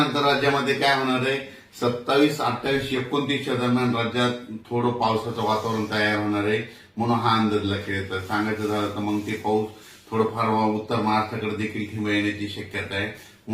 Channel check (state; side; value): identical; both; correlation 1.00